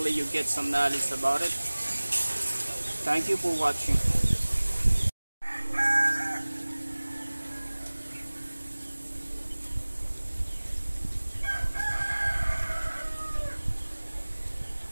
you get some knowledge about it. Thank you for watching.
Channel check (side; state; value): both; inverted; correlation -1.00